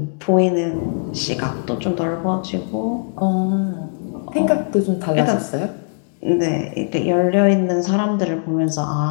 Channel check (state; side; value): silent; right; 58 dB below the other